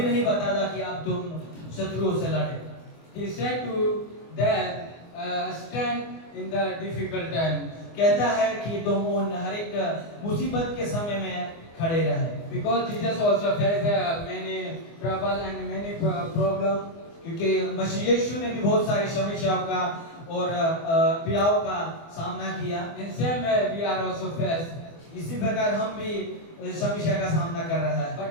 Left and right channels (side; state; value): right; late; 24 ms